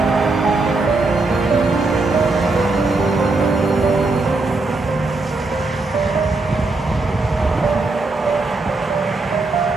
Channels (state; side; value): quieter; left; 3.4 dB